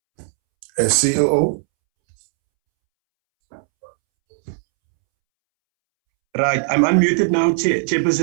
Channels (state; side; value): silent; left; 67 dB below the other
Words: CEO? Right, I'm unmuted now,